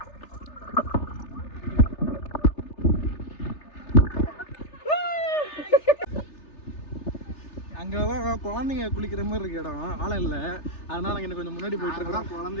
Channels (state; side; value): late; right; 3.3 ms